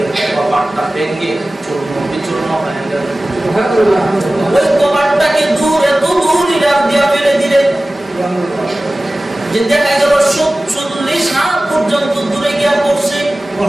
কপাটটা ভেঙে চূর্ণ বিচূর্ণ হয়ে গেল। ওই কপাটটাকে এত দূর ইরাক দিয়া ফেলে দিলেন যে দেখা গেল 40 হাত পর্যন্ত দূরে গিয়া পড়ছে।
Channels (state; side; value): normal; both; correlation 0.97